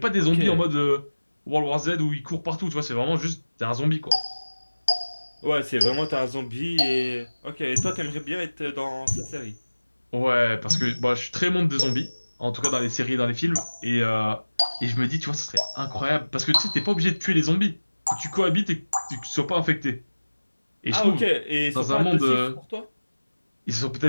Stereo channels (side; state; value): both; inverted; correlation -1.00